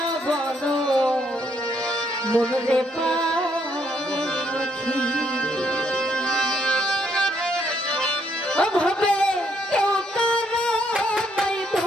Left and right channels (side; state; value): both; normal; correlation 0.72